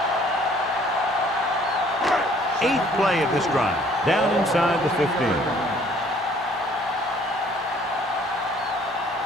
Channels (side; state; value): both; normal; correlation 0.58